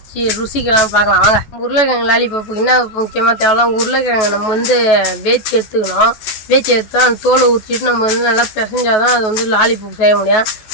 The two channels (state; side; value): late; right; 14 ms